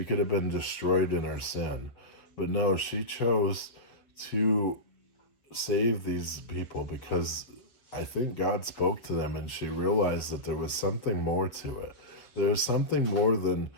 could have been destroyed in her sin. But no, she chose to save these people because I think God spoke to them and she realized that there was something more to it. There's something more than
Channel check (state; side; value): late; right; 7.3 ms